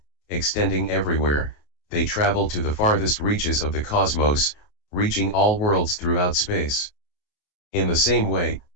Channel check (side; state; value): right; late; 28 ms